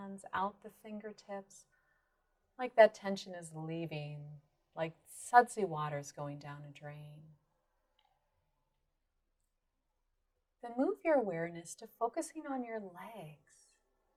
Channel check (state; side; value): identical; both; correlation 1.00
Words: out the fingertips, like that tension is leaving, like sudsy water's going down a drain. Then move your awareness to focusing on your legs.